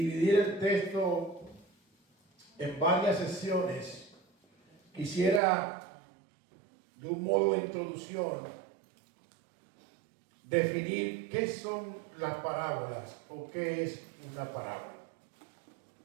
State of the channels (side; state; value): left; drops out; at 5.4 s